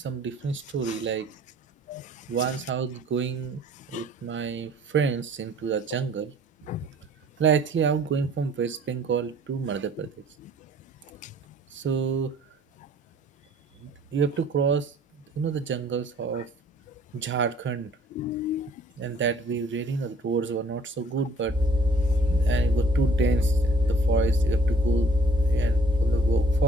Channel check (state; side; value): normal; both; correlation 0.56